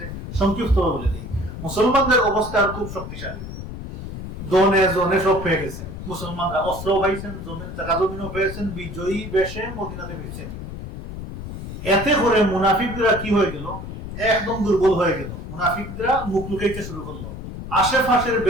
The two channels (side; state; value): left; noise; rumble, 9 dB below the sound